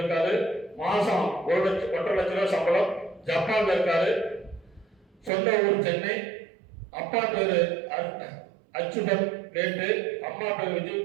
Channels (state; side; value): drops out; left; at 5.3 s